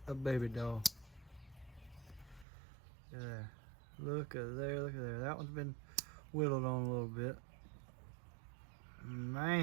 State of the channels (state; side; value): drops out; left; at 2.5 s